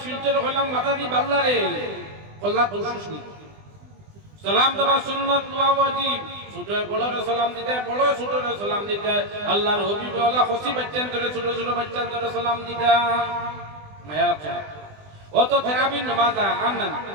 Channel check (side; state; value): left; late; 20 ms